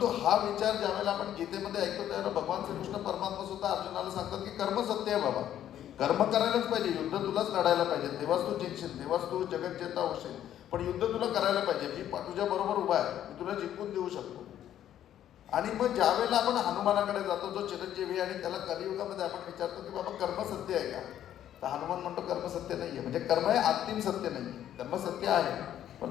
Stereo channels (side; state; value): right; quieter; 11.1 dB